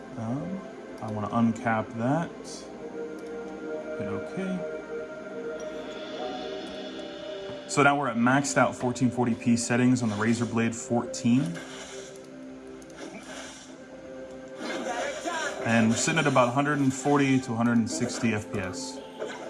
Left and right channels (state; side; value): identical; both; correlation 1.00